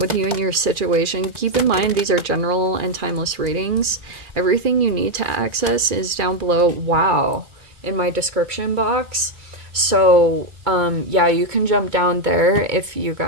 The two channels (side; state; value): left; late; 2.4 ms